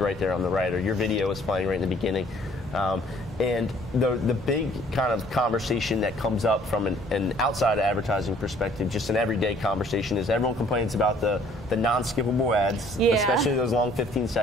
there on the right, or your video is playing right in the beginning. And the big kind of conversation that comes up from an outside advertising perspective, just an everyday conversation, is everyone complains about the non-skippable ads, especially those long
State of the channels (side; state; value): both; normal; correlation 0.58